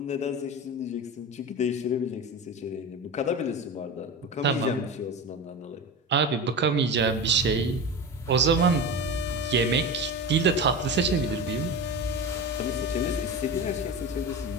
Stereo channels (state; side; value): normal; both; correlation 0.26